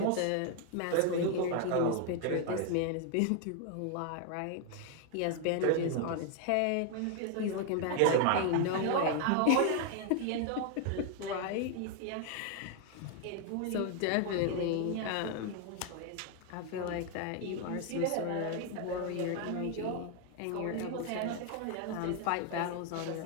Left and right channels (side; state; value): both; different; correlation 0.01